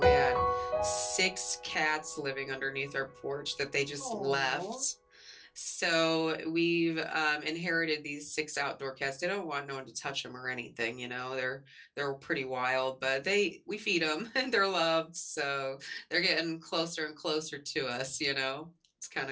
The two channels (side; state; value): both; identical; correlation 1.00